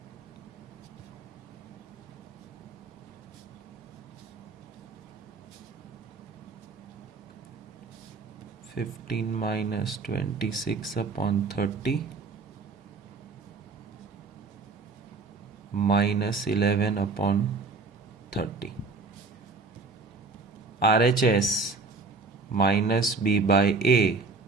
(15 minus 26 upon 30 minus 11 upon 30). RHS minus B by A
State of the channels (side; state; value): left; quieter; 4.0 dB